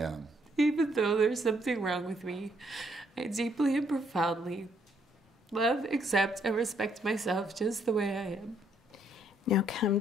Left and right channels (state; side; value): normal; both; correlation 0.70